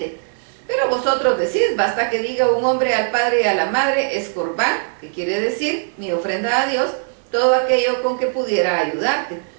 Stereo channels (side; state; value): left; silent; digital silence